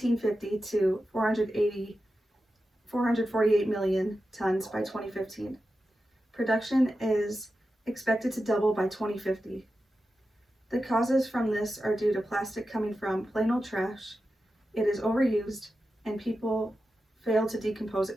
to 448 million tons by 2015. Production is expected to double by 2050. The causes from this are due to plastic coming from plain old trash, it is overused, and people fail to decompose it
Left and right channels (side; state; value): both; normal; correlation 0.91